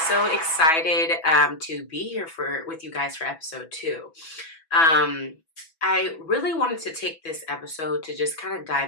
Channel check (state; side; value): late; right; 6.1 ms